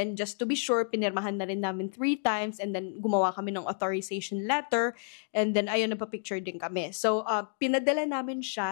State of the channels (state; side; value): silent; right; digital silence